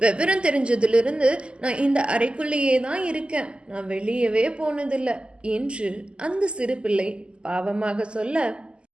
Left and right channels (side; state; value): left; late; 0.051 ms